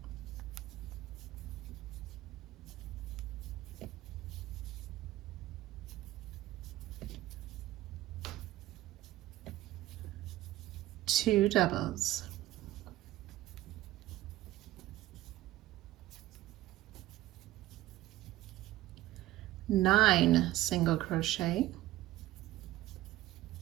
two doubles, nine single crochet,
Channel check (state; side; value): quieter; left; 15.6 dB